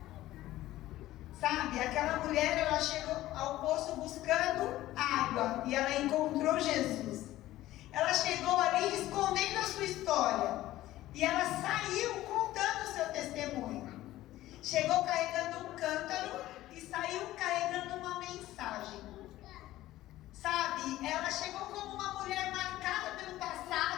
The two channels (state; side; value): quieter; right; 15.4 dB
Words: Sabe, aquela mulher, ela chegou ao poço buscando água e ela encontrou Jesus. Ela chegou ali escondendo a sua história e ela saiu contando o seu testemunho. Chegou carregando um cântaro e saiu carregando uma mensagem. Sabe, ela chegou como uma mulher marcada pelo